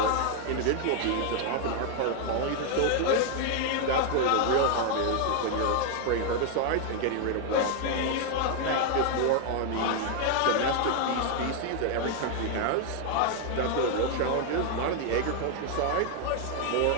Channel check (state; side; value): different; both; correlation 0.00